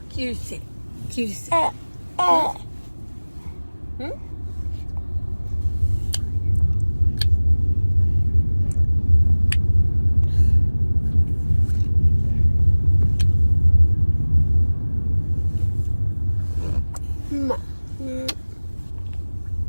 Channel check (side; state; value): both; inverted; correlation -1.00